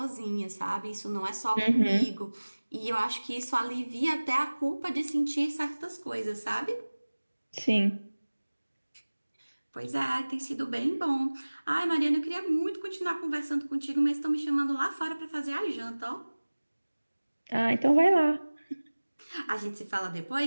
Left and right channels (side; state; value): both; inverted; correlation -1.00